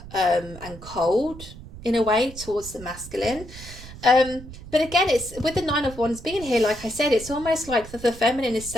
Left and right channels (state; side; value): noise; right; rumble, 15 dB below the sound